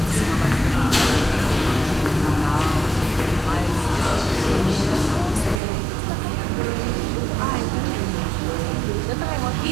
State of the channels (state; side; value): drops out; left; at 5.6 s